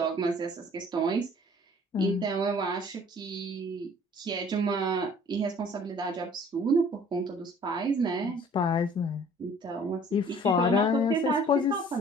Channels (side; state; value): both; normal; correlation 0.53